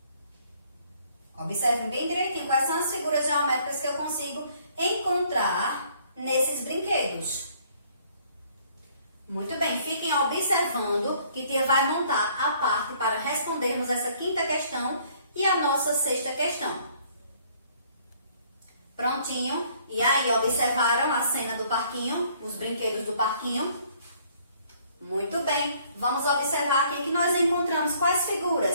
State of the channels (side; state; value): both; inverted; correlation -0.61